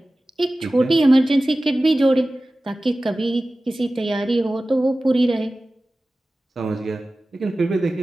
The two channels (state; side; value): normal; both; correlation 0.96